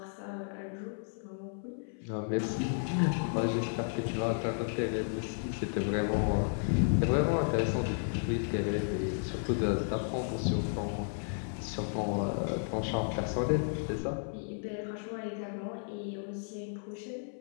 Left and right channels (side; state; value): right; silent; 56 dB below the other